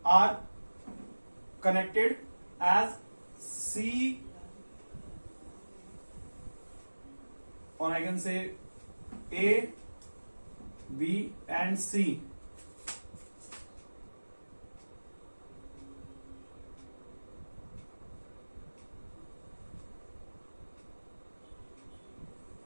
are connected as C, or I can say A, B and C.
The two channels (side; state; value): both; inverted; correlation -1.00